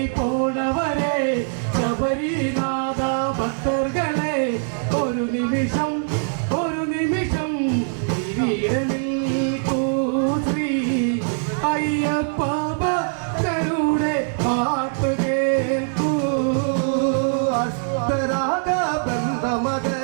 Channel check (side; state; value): left; silent; digital silence